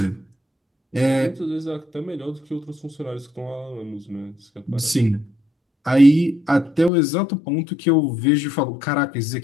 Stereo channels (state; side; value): drops out; right; at 6.9 s